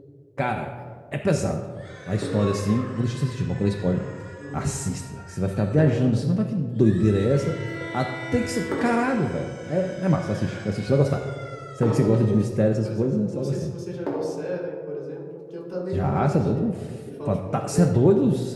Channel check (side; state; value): both; identical; correlation 1.00